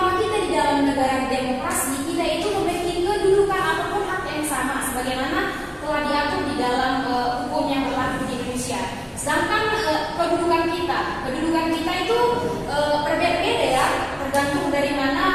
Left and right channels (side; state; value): both; identical; correlation 1.00